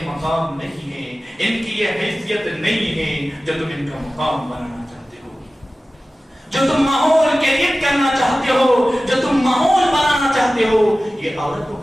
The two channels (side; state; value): both; normal; correlation 0.96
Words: مقام نہیں ہے، ان کی یہ حیثیت نہیں ہے جو تم ان کا مقام بنانا چاہتے ہو، جو تم ماحول کریٹ کرنا چاہتے ہو، جو تم ماحول بنانا چاہتے ہو، یہ عورتوں